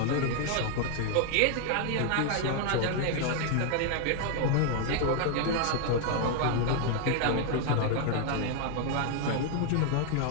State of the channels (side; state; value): both; different; correlation 0.00